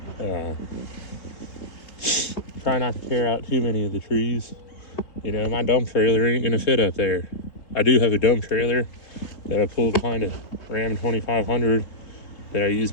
Try not to tear out too many of the trees. My dump trailer ain't gonna fit up there. I do have a dump trailer that I pulled behind a Ram 2500 that I use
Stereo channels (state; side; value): late; right; 3.8 ms